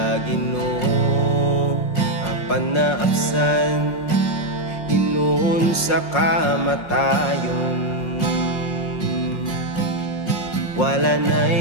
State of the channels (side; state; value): right; late; 5.6 ms